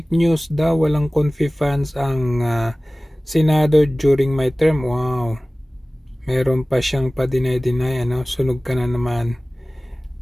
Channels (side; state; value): both; normal; correlation 0.98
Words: news daw, walang confi funds ang Senado during my term. Wow. Meron pa siyang pa-deny, ano? Sunog ka na naman.